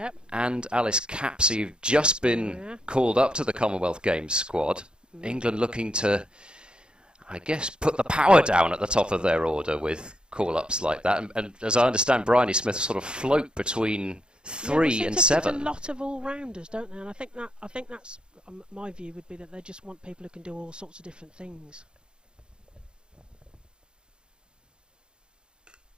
and Alice Capsey, who've just been called up to the Commonwealth Games squad. England looking to, I guess, put the power down at the top of their order with call-ups like that, and as I understand, Bryony Smith sort of float between 3 and 7. A lot of all-rounders, don't they? And I think that's my view would be that they just want people who can do all sorts of different things.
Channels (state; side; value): late; left; 0.050 ms